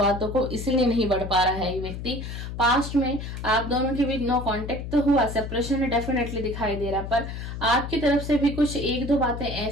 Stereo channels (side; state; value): left; noise; hum, 7 dB below the sound